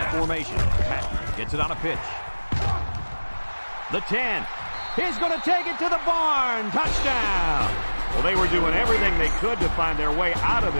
formation. Patton gets it on a pitch. The 10. He's going to take it to the barn. Touchdown. Well, they were doing everything they could to find their way out of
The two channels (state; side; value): inverted; both; correlation -1.00